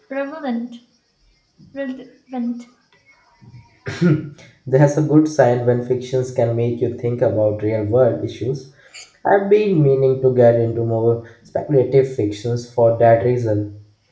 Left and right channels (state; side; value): identical; both; correlation 1.00